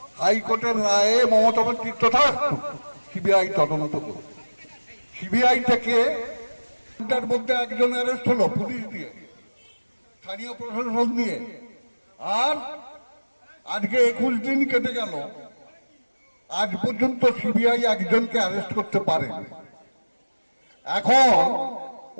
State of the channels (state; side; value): inverted; both; correlation -1.00